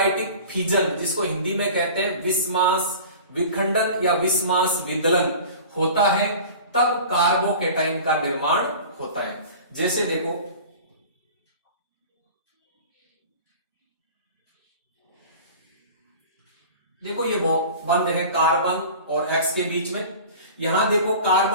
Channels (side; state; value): both; inverted; correlation -0.39